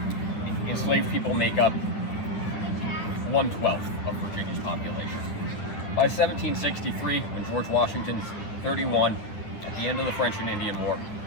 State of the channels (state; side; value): late; right; 9.4 ms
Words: enslaved people make up 1/12 of Virginia's population. By 1763, when George Washington's 31, at the end of the French and Indian War,